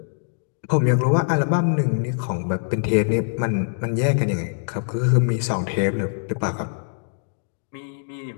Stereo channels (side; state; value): right; silent; 63 dB below the other